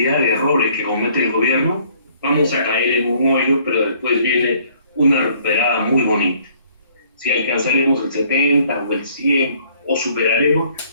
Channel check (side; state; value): both; inverted; correlation -0.60